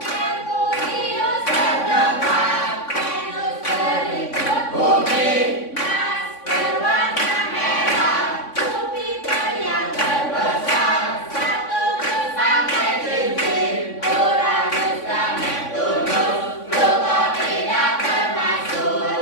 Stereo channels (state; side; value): late; right; 3.5 ms